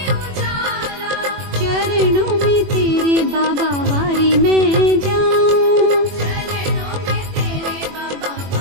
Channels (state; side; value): late; left; 21 ms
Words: उजाला, चरणों में तेरे बाबा वारी में जाऊं, चरणों में तेरे बाबा